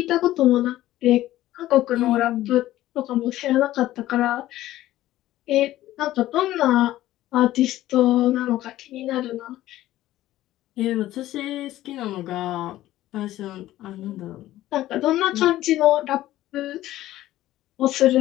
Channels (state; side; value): quieter; right; 14.8 dB